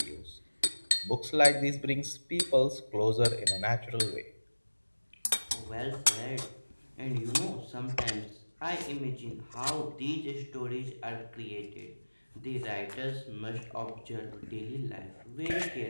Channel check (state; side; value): inverted; both; correlation -1.00